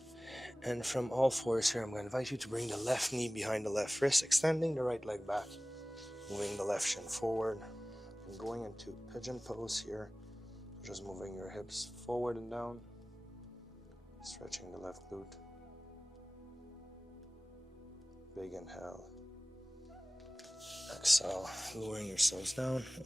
And from all fours here, I'm going to invite you to bring the left knee behind the left wrist, extending the right leg back, moving the left shin forward, and going into pigeon pose here. Just moving your hips forward and down, stretching the left glute. Big inhale. Exhale, lowering yourselves down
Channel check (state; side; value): normal; both; correlation 0.98